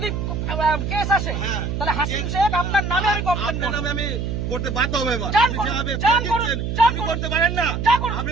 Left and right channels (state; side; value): noise; right; hum, 3 dB below the sound